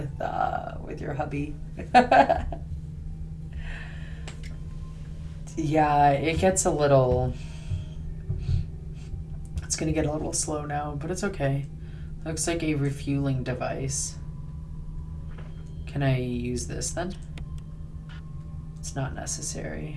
your hubby. Yeah, it gets a little... It's going to get a little slow now, but it's okay. Looks like a refueling device. Can I use this then? It's not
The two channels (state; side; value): identical; both; correlation 1.00